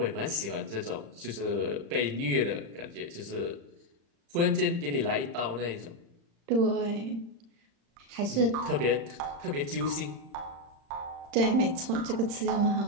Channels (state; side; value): late; left; 35 ms